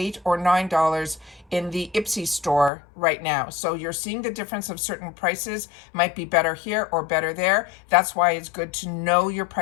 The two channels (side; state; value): right; drops out; at 2.7 s